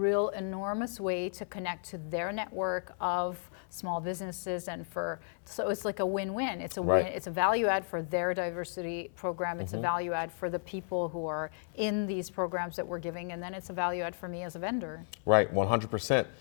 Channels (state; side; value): silent; right; 55 dB below the other